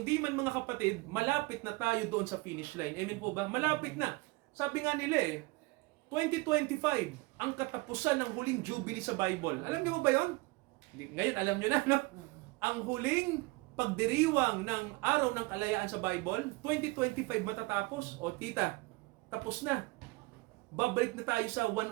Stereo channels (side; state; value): left; quieter; 24.0 dB